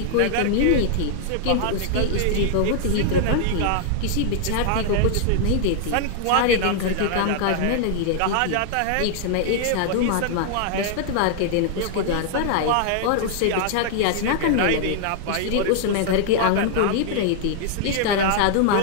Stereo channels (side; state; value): both; different; correlation -0.01